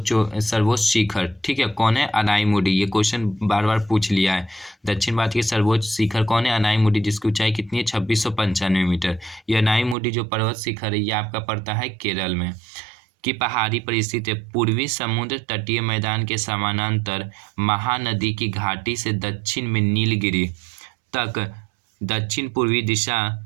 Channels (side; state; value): left; drops out; at 10.0 s